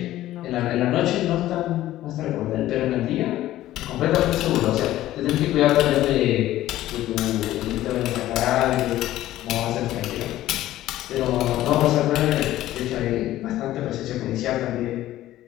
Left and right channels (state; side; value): quieter; right; 14.5 dB